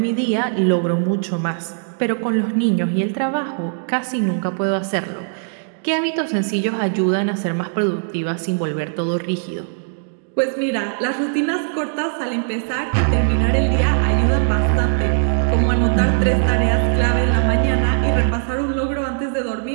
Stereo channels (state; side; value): silent; left; digital silence